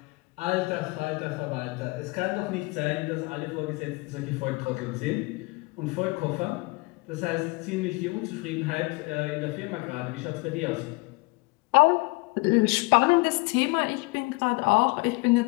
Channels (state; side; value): quieter; right; 26.5 dB